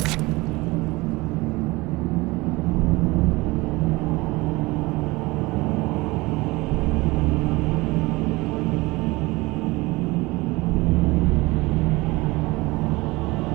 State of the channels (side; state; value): left; quieter; 22.2 dB